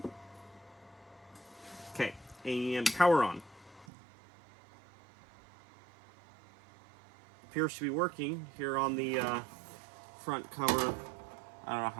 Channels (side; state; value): left; drops out; at 3.9 s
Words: Okay, and power on. Appears to be working here on the front cover. I don't know